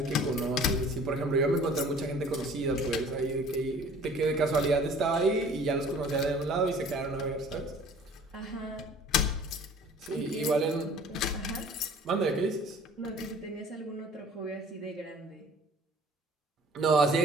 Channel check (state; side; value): normal; both; correlation 0.50